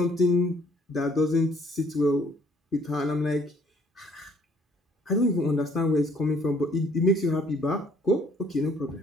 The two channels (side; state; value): both; normal; correlation 0.61